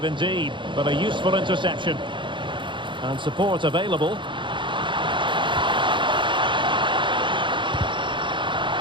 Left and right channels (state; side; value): late; left; 0.23 ms